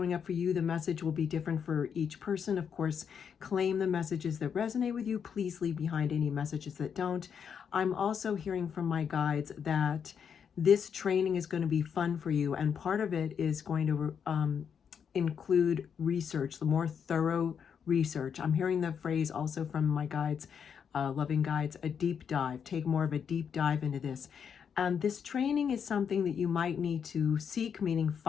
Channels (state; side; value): quieter; right; 7.3 dB